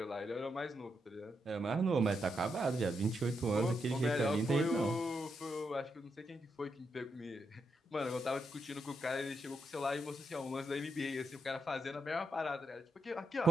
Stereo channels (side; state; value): both; normal; correlation 0.82